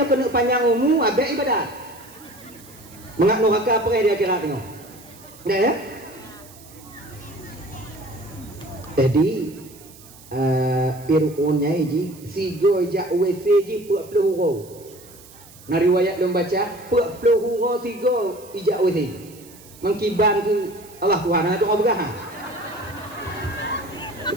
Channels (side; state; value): right; noise; hiss, 22 dB below the sound